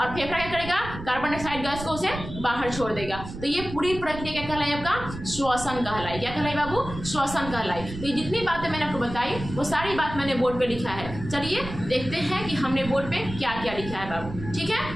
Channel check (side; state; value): right; noise; rumble, 10 dB below the sound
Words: फेफड़ा क्या करेगा, कार्बन डाइऑक्साइड गैस को उसे बाहर छोड़ देगा। तो ये पूरी प्रक्रिया क्या कहलाई, आपका श्वसन कहलाई। क्या कहलाई बाबू, श्वसन कहलाई। तो ये जितनी बातें मैंने आपको बताई वो सारी बात मैंने बोर्ड पे लिखा है। चलिए देखते हैं कि हमने बोर्ड पे क्या क्या लिखा है बाबू। ठीक है,